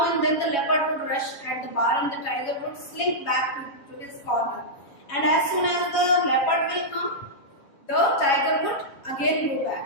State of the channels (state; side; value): late; right; 7.2 ms